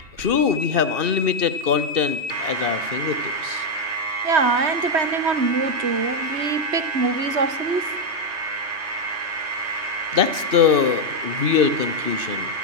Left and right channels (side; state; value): left; late; 2.6 ms